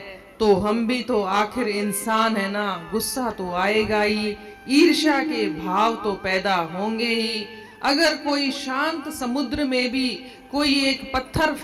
तो हम भी तो आखिर इंसान है ना, गुस्सा तो आएगा ही, ईर्ष्या के भाव तो पैदा होंगे ही। अगर कोई शांत समुद्र में भी कोई एक पत्थर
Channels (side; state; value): both; identical; correlation 1.00